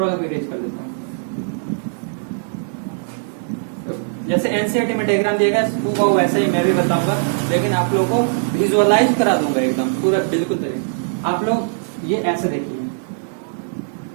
को इरेज कर देता हूँ। जैसे एनसीईआरटी में डायग्राम दिएगा वो वैसे ही मैं भी बताऊंगा, लेकिन आप लोगों को विजुअलाइज करा दूंगा एकदम पूरा बिल्कुल तरीके। आप लोग ये ऐसे देखिए,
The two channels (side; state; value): left; silent; digital silence